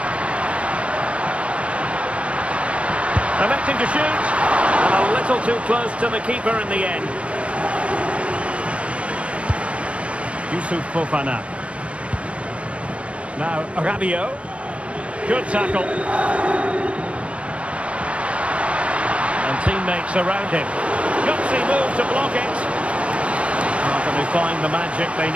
Electing to shoot, and a little too close to the keeper in the end. Youssouf Fofana. Now Rabiot. Good tackle. And teammates around him. Gutsy move to block it. How can they find the magic they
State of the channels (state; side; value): late; left; 0.062 ms